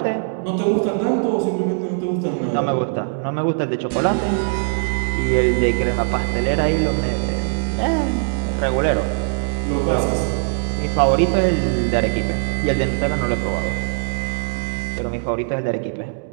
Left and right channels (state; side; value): silent; left; digital silence